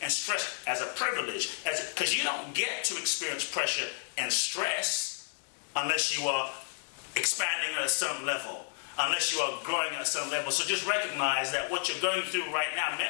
and stress as a privilege, because you don't get to experience pressure and stress unless you are expanding at a certain level, unless you are growing at a certain level. So just recognize that what you're going through right now,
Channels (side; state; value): right; silent; digital silence